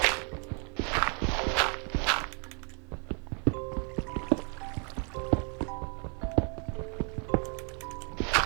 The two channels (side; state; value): left; quieter; 38.9 dB